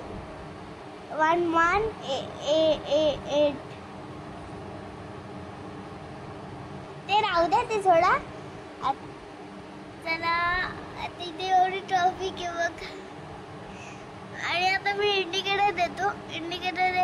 ते राहू द्या, ते सोडा. चला तिथे एवढी ट्रॅफिक आहे बघ. आणि आता मी इंडिकेटर देतो. इंडिकेटर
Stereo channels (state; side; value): identical; both; correlation 1.00